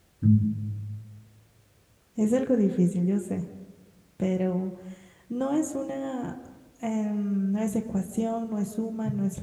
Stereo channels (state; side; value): identical; both; correlation 1.00